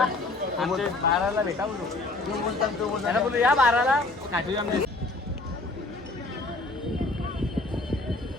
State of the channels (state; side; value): quieter; right; 3.1 dB